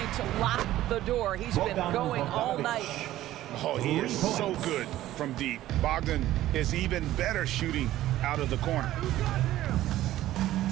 to lock the door. He's been going all night. Oh, he is so good from deep. Bogdan is even better shooting out of the corner.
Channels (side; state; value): left; quieter; 14.4 dB